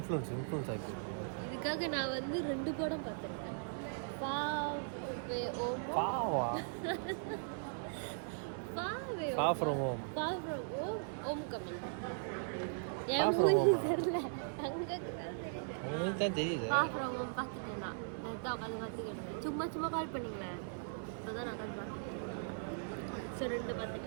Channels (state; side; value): silent; left; digital silence